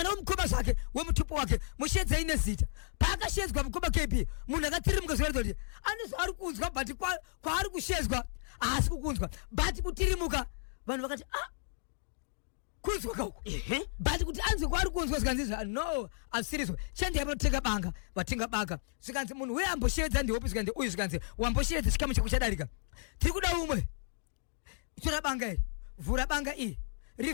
wemukoma zvake wemutupo wake mushedzei nezita paakashedzwa mukoma KP munhu akatirimuka zvoratidza kuti ane zvaari kunzwa but kwaari kushedzwa haasi kukunzwa but kutirimuka vanhu vakati kunzwa kauko but kuti anzwe kwaari kunzwa zvikanzi no asirizwa chandiyai panotenga banga vatenga banga zvikanzi munhu uye amboshevedza ndihopi zvikanzi uyu zvikanzi wamboshevedza chikamu chako chadarika tiri kuda umwe tora banga iri vhura banga iyi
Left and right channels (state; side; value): silent; right; digital silence